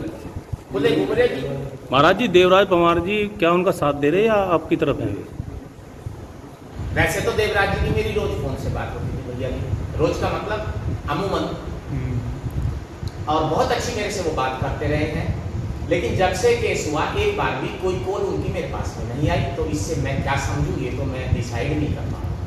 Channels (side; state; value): both; identical; correlation 1.00